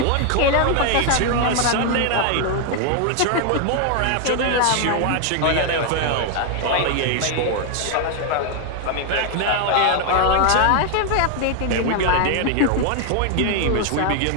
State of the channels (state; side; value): different; both; correlation 0.00